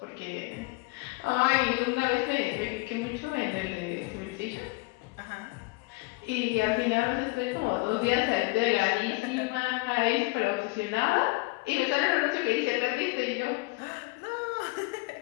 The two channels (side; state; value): right; quieter; 24.6 dB